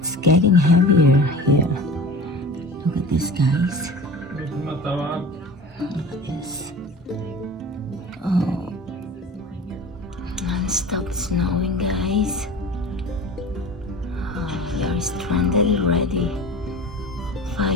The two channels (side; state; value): both; normal; correlation 0.36